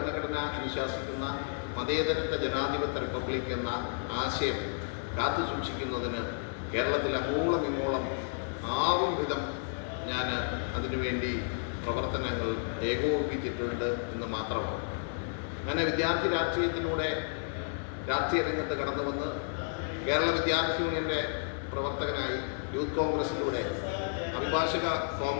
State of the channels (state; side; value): silent; right; digital silence